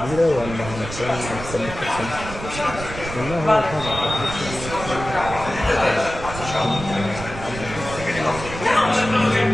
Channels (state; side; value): noise; right; rumble, 10 dB below the sound